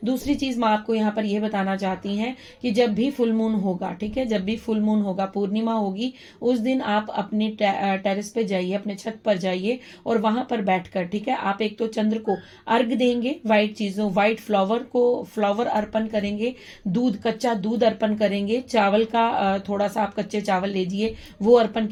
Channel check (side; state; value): both; identical; correlation 1.00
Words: दूसरी चीज माँ आपको यहाँ पर यह बताना चाहती हैं कि जब भी फुल मून होगा, ठीक है, जब भी फुल मून होगा, पूर्णिमा होगी, उस दिन आप अपने टेरेस पे जाइए, अपने छत पर जाइए, और वहां पर बैठकर, ठीक है, आप एक तो चंद्र को अर्घ देंगे, व्हाइट चीजों, व्हाइट फ्लावर अर्पण करेंगे, दूध, कच्चा दूध अर्पण करेंगे, चावल का थोड़ा सा आप कच्चे चावल लीजिए, वो अर्पण